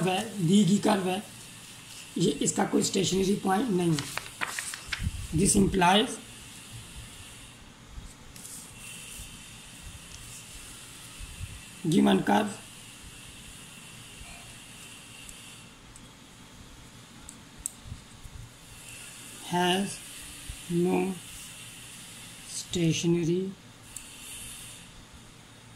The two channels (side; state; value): both; identical; correlation 1.00